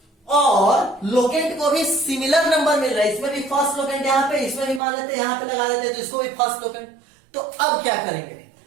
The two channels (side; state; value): left; drops out; at 4.8 s